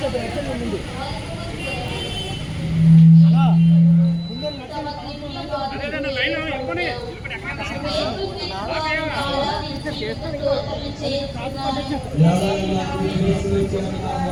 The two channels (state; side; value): identical; both; correlation 1.00